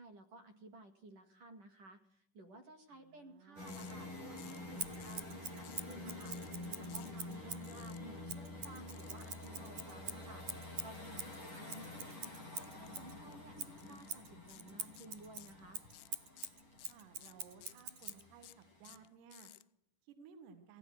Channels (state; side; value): late; left; 10 ms